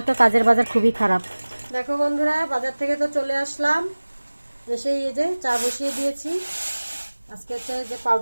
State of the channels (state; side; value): inverted; both; correlation -1.00